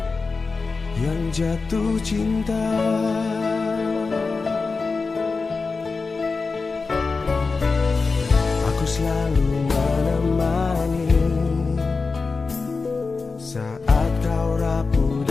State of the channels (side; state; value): right; quieter; 4.3 dB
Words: yang jatuh cinta. Aku selalu menemani saat kau rapuh